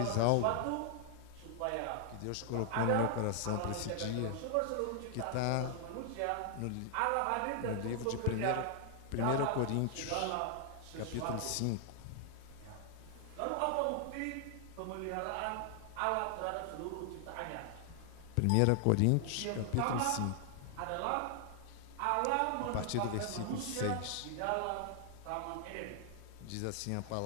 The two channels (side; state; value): both; different; correlation 0.00